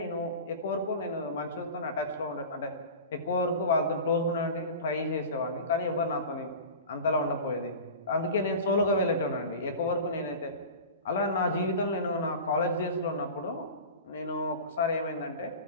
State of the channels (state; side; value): inverted; both; correlation -0.34